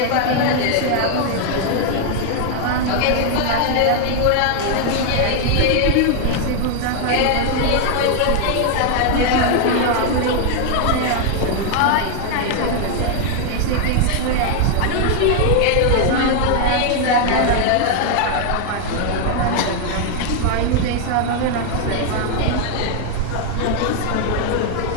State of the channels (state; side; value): different; both; correlation 0.00